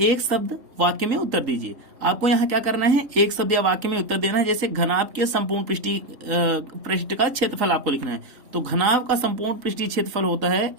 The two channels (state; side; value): late; left; 3.8 ms